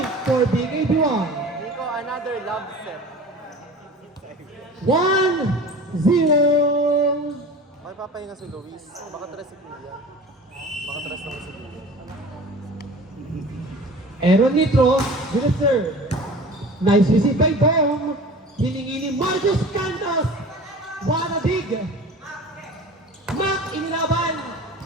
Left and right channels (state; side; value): normal; both; correlation 0.39